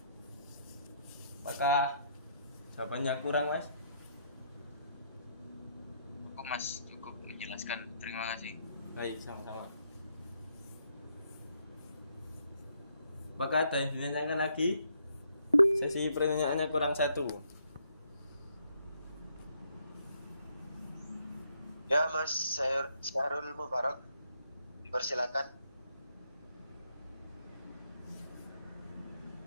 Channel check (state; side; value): inverted; both; correlation -0.72